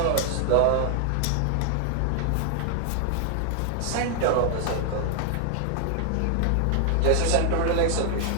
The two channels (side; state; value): both; different; correlation 0.00